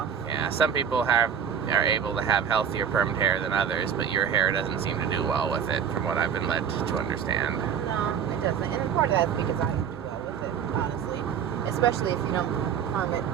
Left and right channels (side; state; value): left; quieter; 7.9 dB